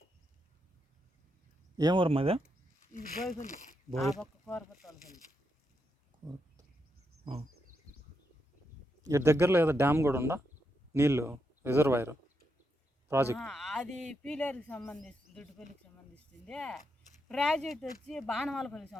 ఏం ఊరు మాది? ఇది బోయపల్లి, కోరపల్లి. ఇటు దగ్గరలో ఏదో డ్యామ్ కూడా ఉందా, నీళ్ళు రిజర్వాయర్ ప్రాజెక్ట్? అది పీలేరుకి సంబంధిస్తుంది, దుడ్డుపల్లికి సంబంధిస్తుంది. ప్రాజెక్ట్ వచ్చి బాణమాలపల్లికి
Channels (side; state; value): both; normal; correlation 0.82